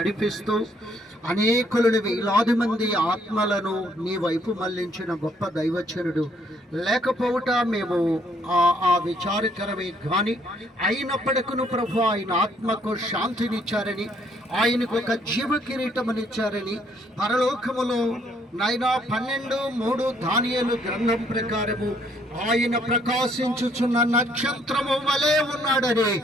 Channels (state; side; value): normal; both; correlation 0.67